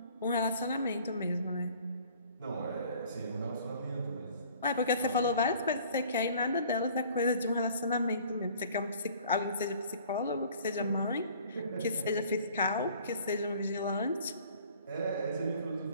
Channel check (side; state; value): both; inverted; correlation -0.52